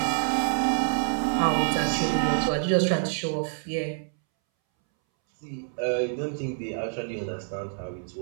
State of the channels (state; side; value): silent; left; 60 dB below the other